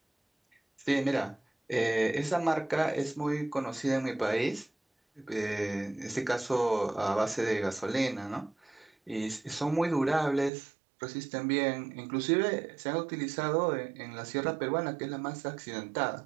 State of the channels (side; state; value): left; drops out; at 10.5 s